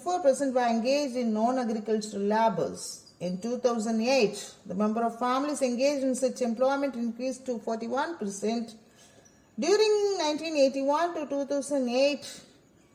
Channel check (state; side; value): identical; both; correlation 1.00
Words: were engaged in non-agricultural labors. In 2008, the number of families engaged in such employment increased to 41%. During 1981 to 2008,